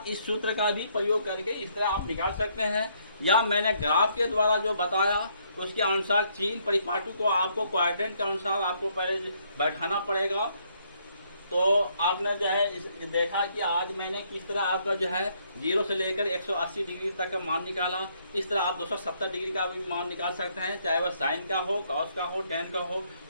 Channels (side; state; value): both; inverted; correlation -0.70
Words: इस सूत्र का भी प्रयोग करके इस तरह आप निकाल सकते हैं। या मैंने ग्राफ के द्वारा जो बताया उसके अनुसार चीन परिपाटी को आपको क्वाड्रेंट के अनुसार आपको पहले बैठाना पड़ेगा। तो आपने जो है देखा कि आज मैंने किस तरह आपका जो है 0 से लेकर 180 डिग्री तक का मान निकाला। इस तरह आप 270 डिग्री का भी मान निकाल सकते हैं, चाहे वह साइन का हो, कॉस का हो, टेन का हो।